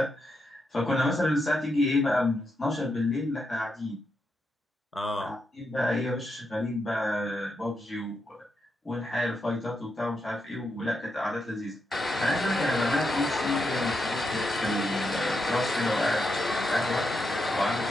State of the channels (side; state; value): both; normal; correlation 0.83